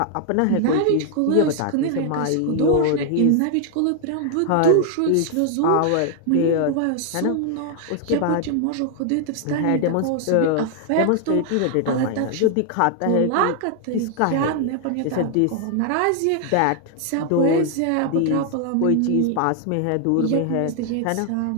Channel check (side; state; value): both; different; correlation 0.00